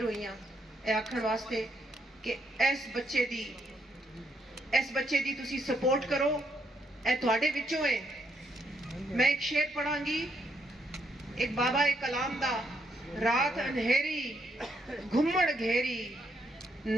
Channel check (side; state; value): both; normal; correlation 0.76